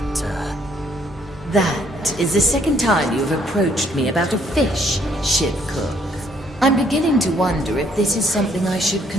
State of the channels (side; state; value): both; normal; correlation 0.66